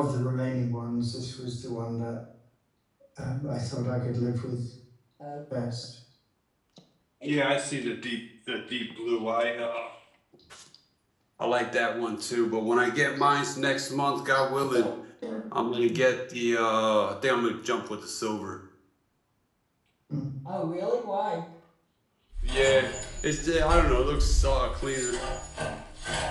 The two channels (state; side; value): identical; both; correlation 1.00